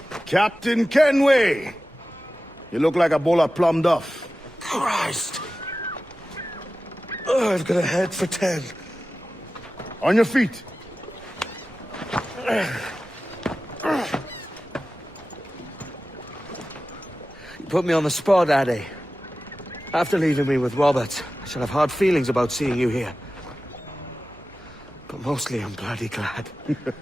Captain Kenway! You look like a bowl of plum duff. Christ! Oh, I've got a head for 10. On your feet. You put me on the spot, Addy. After leaving me with Robert, I shall have hard feelings about seeing you here. But mostly I'm bloody glad.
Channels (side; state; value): both; normal; correlation 0.95